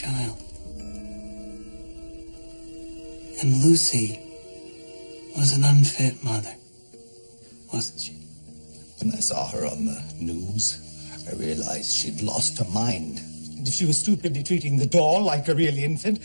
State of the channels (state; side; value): inverted; both; correlation -1.00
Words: And Lucy was an unfit mother, wasn't she? When I saw her on the news, I realized she'd lost her mind. And if she was stupidly treating the doll like a real infant,